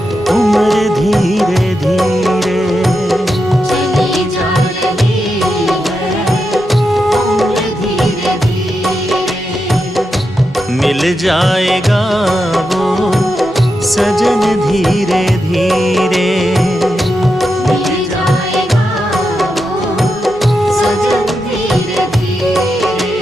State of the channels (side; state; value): both; normal; correlation 0.87